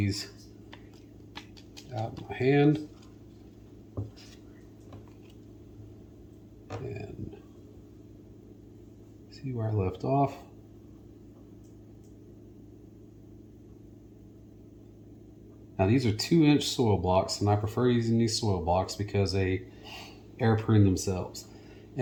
out of my hand and see where I left off. Now these are 2-inch soil blocks, and I prefer using these soil blocks because they air prune themselves.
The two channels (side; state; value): both; identical; correlation 1.00